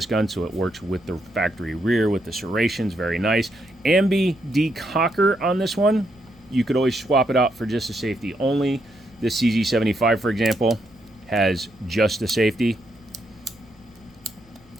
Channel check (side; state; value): right; noise; hum, 30 dB below the sound